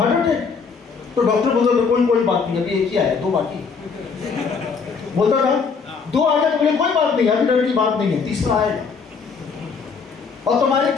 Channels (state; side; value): quieter; right; 5.4 dB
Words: attack, तो डॉक्टर बोलता था कोई बात नहीं, अभी एक ही आया, 2 बाकी। बोलता था 2 आ गए तो बोले कोई बात नहीं, अभी डर की बात नहीं है, तीसरा आएगा। और तुम्हारी